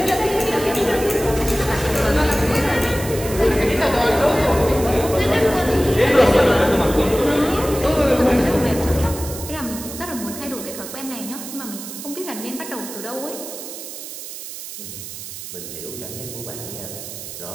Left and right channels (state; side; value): noise; right; hiss, 10 dB below the sound